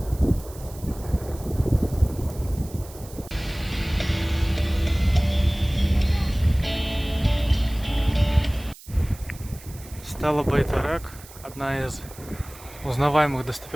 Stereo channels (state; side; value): noise; right; hiss, 19 dB below the sound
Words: Стала Байтарак, одна из узнаваемых